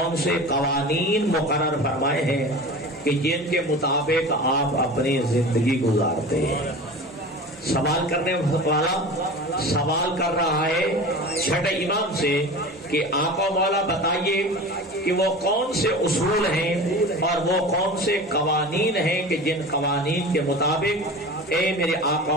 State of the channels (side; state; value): both; normal; correlation 0.34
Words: سے قوانین مقرر فرمائے ہیں کہ جن کے مطابق آپ اپنی زندگی گزارتے ہیں۔ سوال کرنے والا سوال کر رہا ہے چھٹے امام سے کہ آقا مولا بتائیے کہ وہ کون سے اصول ہیں اور وہ کون سے قوانین ہیں کہ جن قوانین کے مطابق اے میرے